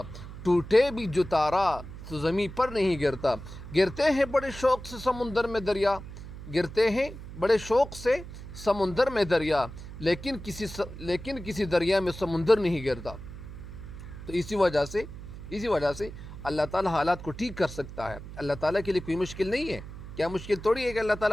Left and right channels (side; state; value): right; noise; hum, 12 dB below the sound